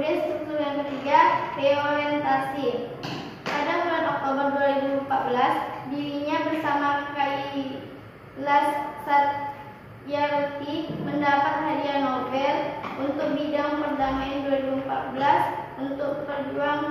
struktur yang ketiga, reorientasi. Pada bulan Oktober 2014, dirinya bersama Kailash Satyarthi mendapat hadiah Nobel untuk bidang perdamaian 2014 untuk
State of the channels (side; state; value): both; identical; correlation 1.00